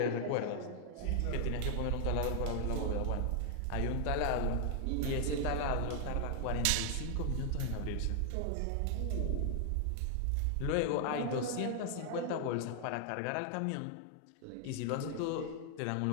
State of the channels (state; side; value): different; both; correlation 0.00